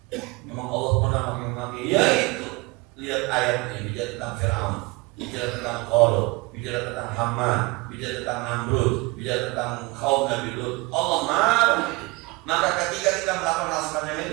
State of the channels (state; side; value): quieter; left; 25.2 dB